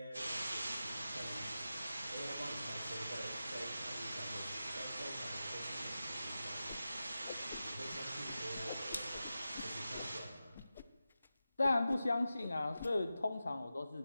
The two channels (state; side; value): inverted; both; correlation -0.92